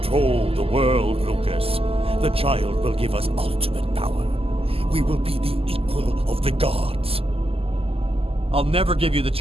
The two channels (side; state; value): left; late; 0.28 ms